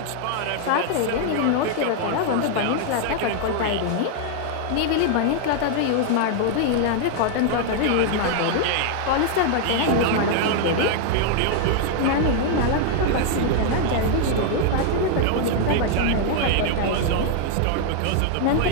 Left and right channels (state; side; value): different; both; correlation 0.00